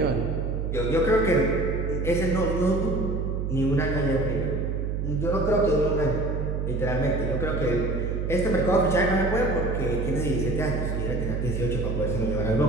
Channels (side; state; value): right; noise; hum, 1 dB below the sound